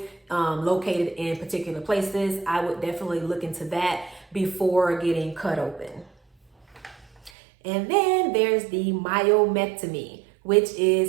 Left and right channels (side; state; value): left; drops out; at 7.3 s